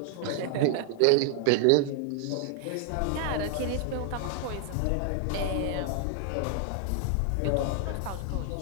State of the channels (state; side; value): different; both; correlation 0.00